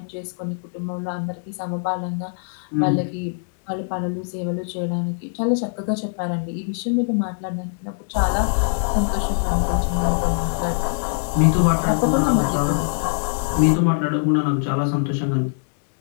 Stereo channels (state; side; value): silent; right; digital silence